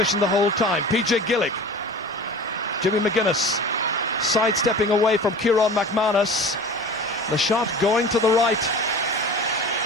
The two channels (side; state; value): both; normal; correlation 0.38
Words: the whole time. PJ Gillick. Jimmy McGuinness sidestepping away from Kieran McManus. The shot going to the right.